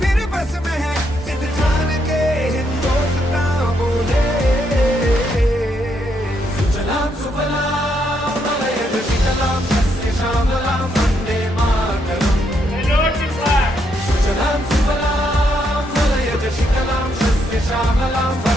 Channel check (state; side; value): normal; both; correlation 0.76